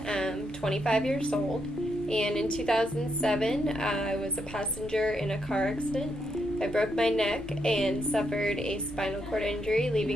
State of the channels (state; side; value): normal; both; correlation 0.79